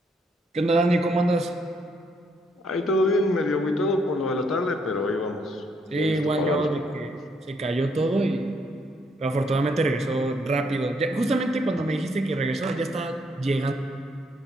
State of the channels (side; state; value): both; normal; correlation 0.72